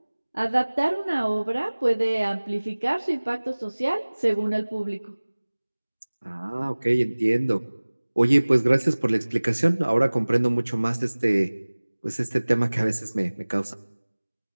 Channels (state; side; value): inverted; both; correlation -1.00